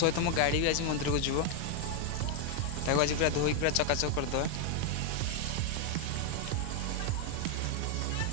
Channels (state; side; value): different; both; correlation 0.00